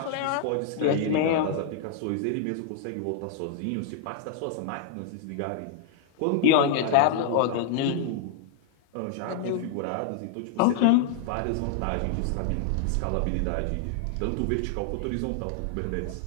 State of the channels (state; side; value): different; both; correlation 0.00